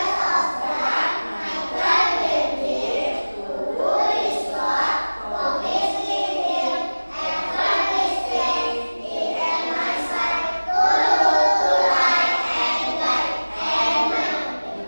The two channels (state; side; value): inverted; both; correlation -1.00